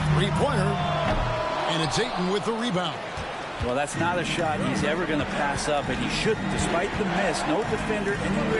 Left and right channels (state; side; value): identical; both; correlation 1.00